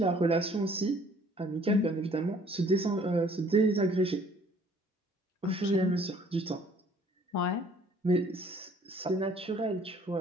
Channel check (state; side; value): normal; both; correlation 0.57